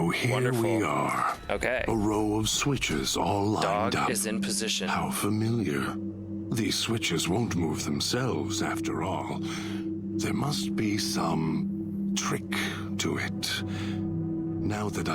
here Wonderful. we are. Okay. A row of switches all lined Dog up. is in position. How familiar. These switches won't move themselves after all. There must be some trick to it. Now that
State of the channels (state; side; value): identical; both; correlation 1.00